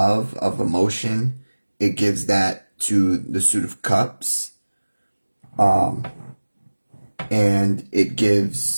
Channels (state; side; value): inverted; both; correlation -1.00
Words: of emotion. It gives that to the Suit of Cups. And it